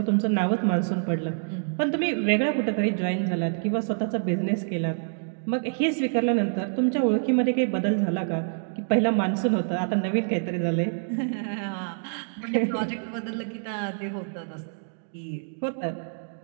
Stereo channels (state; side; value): silent; left; digital silence